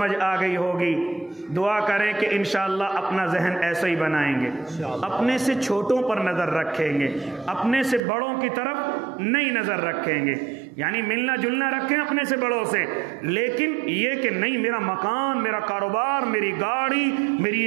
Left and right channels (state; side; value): drops out; left; at 8.0 s